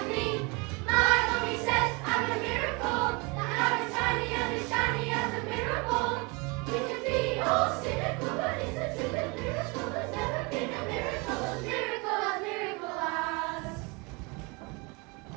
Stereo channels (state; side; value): quieter; left; 28.7 dB